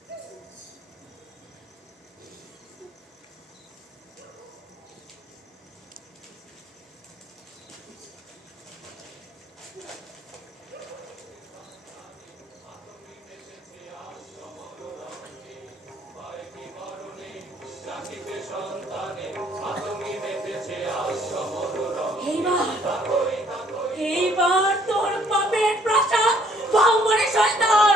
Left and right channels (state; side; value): normal; both; correlation 0.62